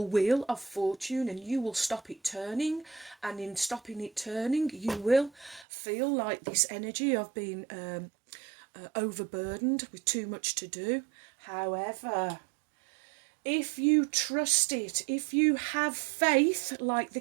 wheel of fortune, and you will stop it turning, and in stopping it turning you will feel like this energy of being overburdened with too much to do. However, if you trust it, if you have faith like the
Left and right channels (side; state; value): left; drops out; at 5.7 s